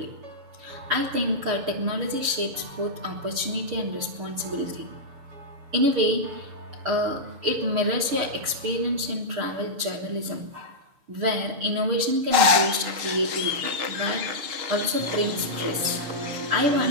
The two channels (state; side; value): late; left; 6.9 ms